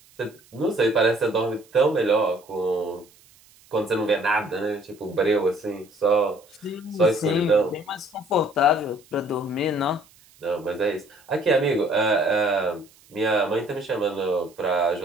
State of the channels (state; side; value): noise; right; hiss, 28 dB below the sound